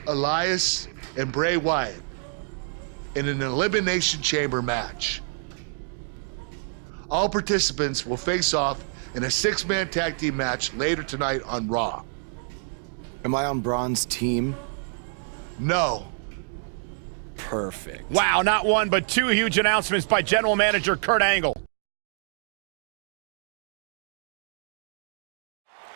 Elias, and Bray Wyatt in an Elimination Chamber match. All participants will face off in a 6-man tag team match later tonight on Raw. Am I on Braun's team? No. Perfect. Wow, not one, but two huge announcements by General Manager Kurt Angle.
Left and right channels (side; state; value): left; silent; 60 dB below the other